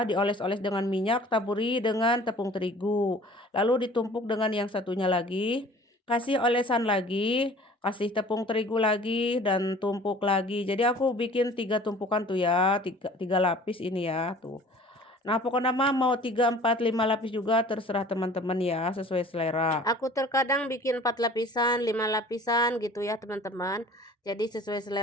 dioles-oles dengan minyak, taburi dengan tepung terigu. Lalu ditumpuk dengan yang satunya lagi. Kasih olesan lagi, kasih tepung terigu lagi dan tumpuk lagi. Jadi aku bikin 3 tumpukan tuh ya, 3 lapis ini ya, tuh. Nah, pokoknya mah mau 3, 4, 5 lapis juga terserah teman-teman ya, sesuai selera. Aku terkadang bikin 4 lapisan, 5 lapisan gitu ya teman-teman. Jadi sesuai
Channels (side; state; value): both; normal; correlation 0.48